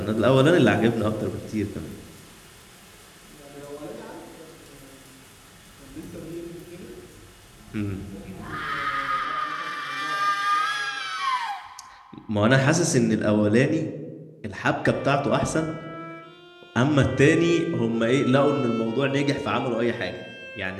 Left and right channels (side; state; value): both; identical; correlation 1.00